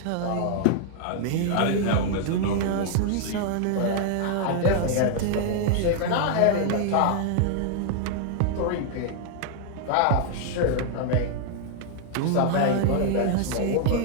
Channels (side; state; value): both; different; correlation 0.00